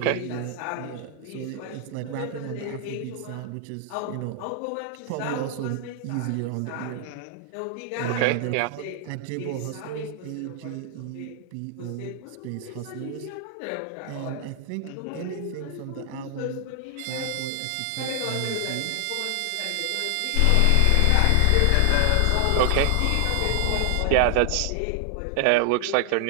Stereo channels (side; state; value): both; different; correlation 0.00